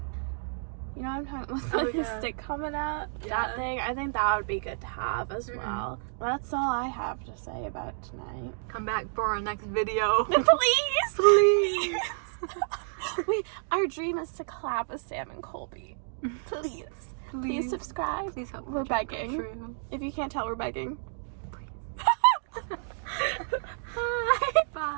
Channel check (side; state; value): left; silent; digital silence